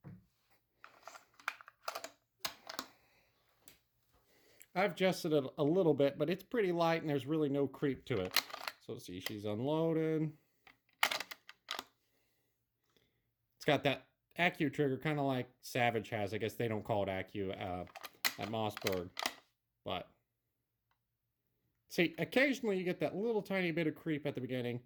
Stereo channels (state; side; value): identical; both; correlation 1.00